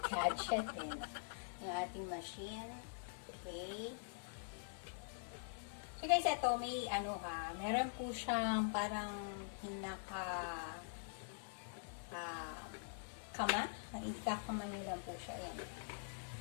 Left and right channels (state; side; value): silent; right; digital silence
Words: din. Yung ating machine. Okay. So, guys, ito may meron po siyang parang kama. Ikakama nyo lang po siya. Ayan.